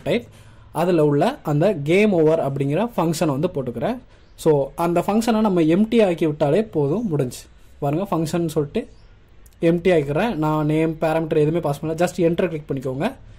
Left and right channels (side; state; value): both; identical; correlation 1.00